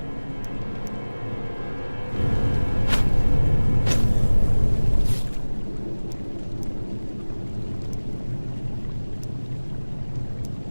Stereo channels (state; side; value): inverted; both; correlation -1.00